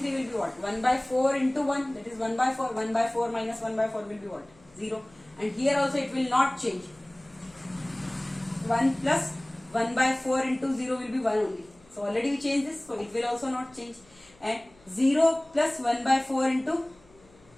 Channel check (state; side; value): noise; left; hum, 29 dB below the sound